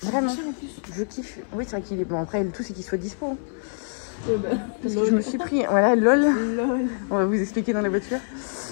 Vraiment. Je kiffe. Oui, c'est vrai qu'il est bon. Après, le tout c'est qu'il soit dispo. Parce que je me suis pris. Voilà, lol. On va vous expliquer dans la voiture.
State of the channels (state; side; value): silent; right; 62 dB below the other